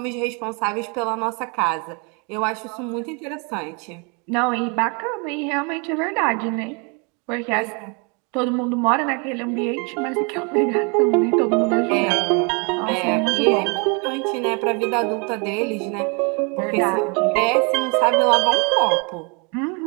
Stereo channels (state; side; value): quieter; left; 33.4 dB